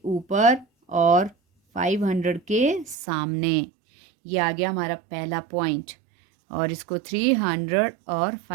ऊपर और 500 के सामने। ये आ गया हमारा पहला पॉइंट, और इसको 300 और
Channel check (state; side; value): drops out; left; at 3.0 s